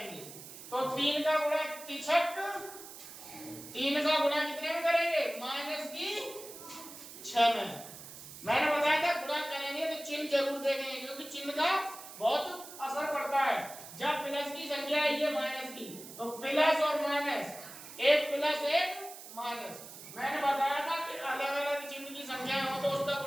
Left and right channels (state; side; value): noise; right; hiss, 14 dB below the sound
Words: तो 3 का गुणा तिछक, 3 का गुणा कितने में करेंगे? माइनस की 6 में। मैंने बताया था गुणा करेंगे तो चिन्ह जरूर देखेंगे, क्योंकि चिन्ह का बहुत असर पड़ता है। जब प्लस की संख्या है ये माइनस की, तो प्लस और माइनस, एक प्लस एक माइनस। मैंने बताया था कि अलग अलग चिन्ह की संख्या हो तो उसका